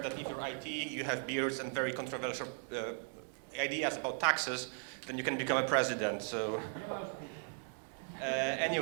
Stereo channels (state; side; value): silent; left; 53 dB below the other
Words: that if you're IT, you have beards and very controversial ideas about taxes, then you can become a president. So